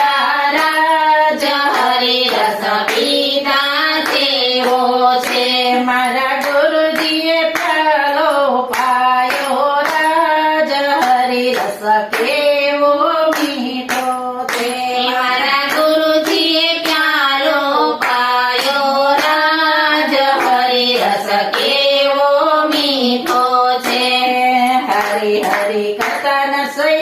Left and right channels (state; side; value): identical; both; correlation 1.00